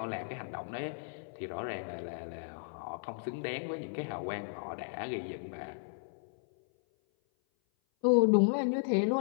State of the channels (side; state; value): right; silent; 55 dB below the other